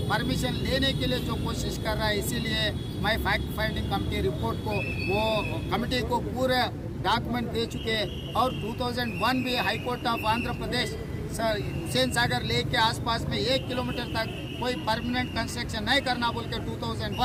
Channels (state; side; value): identical; both; correlation 1.00